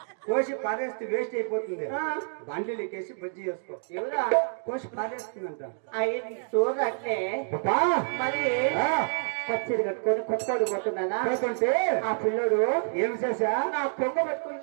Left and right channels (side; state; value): left; silent; digital silence